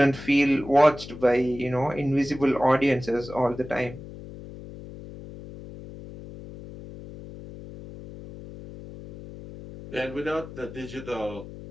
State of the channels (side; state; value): left; noise; hum, 14 dB below the sound